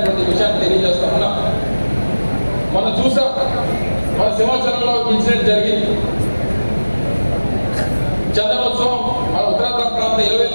విషయాన్ని తెలియజేస్తా ఉన్నా. మనం చూసాం, మన సింహాచలంలో ఇన్సిడెంట్ జరిగింది. చందనోత్సవం మన ఉత్తరాంధ్ర ప్రాంత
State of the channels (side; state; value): both; inverted; correlation -1.00